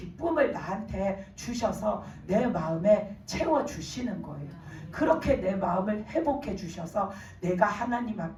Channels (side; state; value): both; identical; correlation 1.00